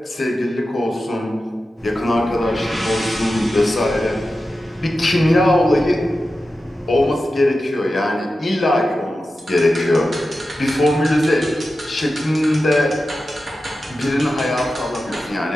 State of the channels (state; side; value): normal; both; correlation 0.92